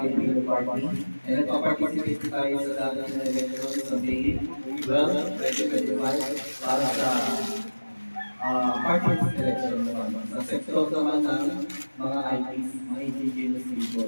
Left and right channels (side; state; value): both; inverted; correlation -1.00